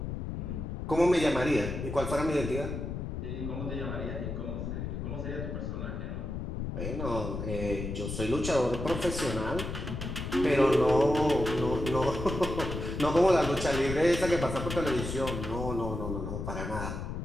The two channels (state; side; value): noise; left; rumble, 5 dB below the sound